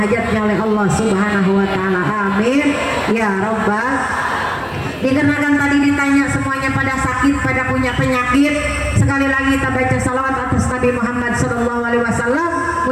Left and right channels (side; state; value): both; identical; correlation 1.00